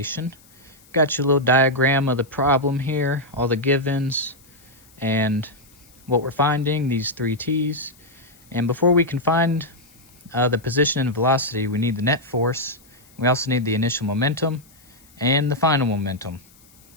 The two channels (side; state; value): left; noise; hiss, 27 dB below the sound